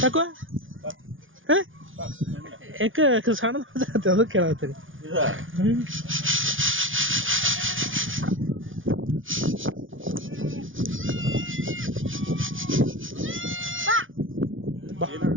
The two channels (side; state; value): left; late; 0.57 ms